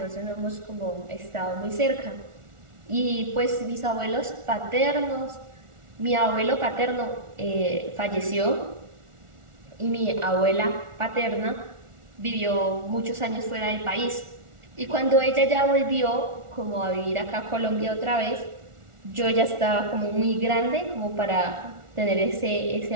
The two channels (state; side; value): late; left; 1.4 ms